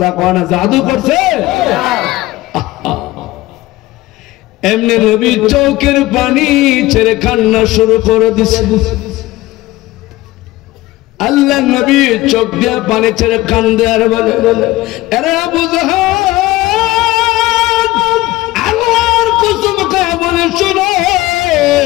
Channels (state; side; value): quieter; right; 18.0 dB